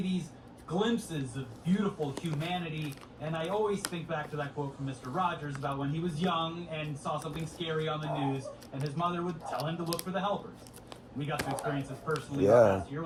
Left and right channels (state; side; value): identical; both; correlation 1.00